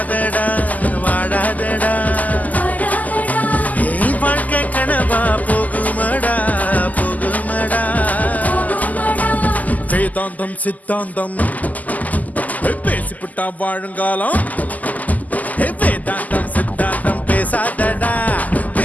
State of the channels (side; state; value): right; late; 0.079 ms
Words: வாழாதடா ஏய் வாழ்க்கை கனவா போகுமடா போகுமடா வேதாந்தம் சித்தாந்தம் பேசிவிட்டா வாழுங்காலம் வேதாந்தம் சித்தாந்தம் பேசாதடா